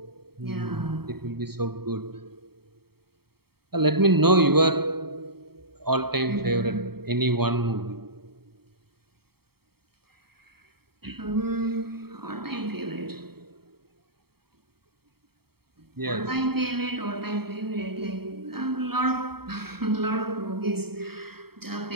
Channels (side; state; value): left; late; 0.95 ms